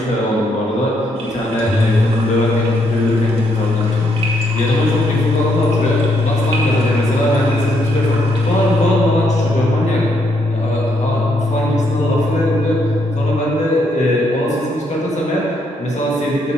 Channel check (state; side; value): normal; both; correlation 0.74